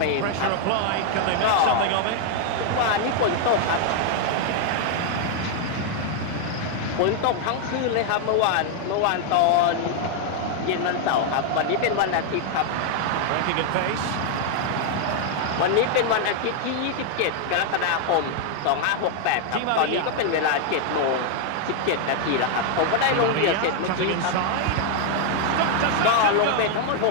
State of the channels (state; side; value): different; both; correlation 0.00